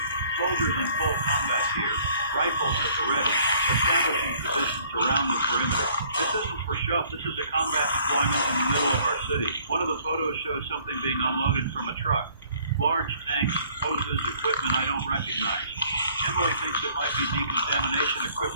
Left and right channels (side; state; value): both; inverted; correlation -0.58